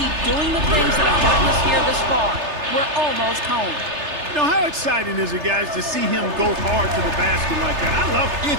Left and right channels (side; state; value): left; late; 3.3 ms